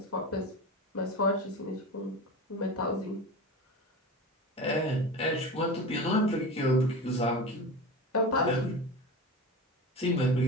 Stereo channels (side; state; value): both; normal; correlation 0.28